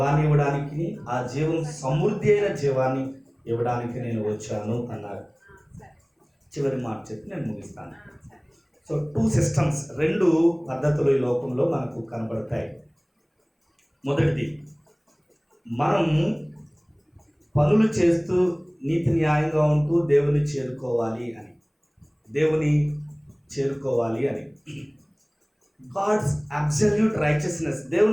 ఇవ్వడానికి, ఆ జీవం సమృద్ధి అయిన జీవాన్ని ఇవ్వడానికి నేను వచ్చాను అన్నారు. చివరి మాట చెప్పి నేను ముగిస్తాను. సో 2 సిస్టమ్స్, 2 పద్ధతులు ఈ లోకంలో మనకు కనబడతాయి. మొదటిది, మనం పనులు చేస్తూ నీతి న్యాయంగా ఉంటూ దేవుని చేరుకోవాలి అని. గాడ్స్ అబ్సల్యూట్ రైచియస్నెస్,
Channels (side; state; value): both; identical; correlation 1.00